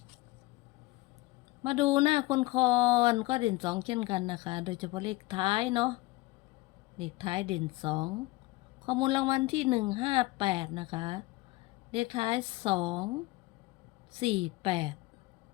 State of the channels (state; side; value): quieter; right; 20.8 dB